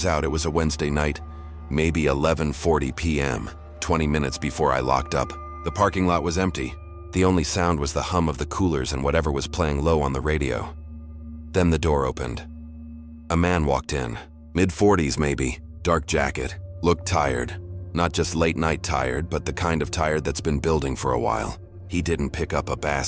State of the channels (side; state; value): both; identical; correlation 1.00